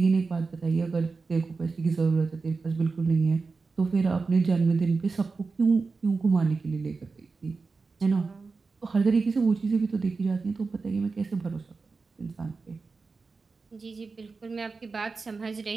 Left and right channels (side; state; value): left; quieter; 4.3 dB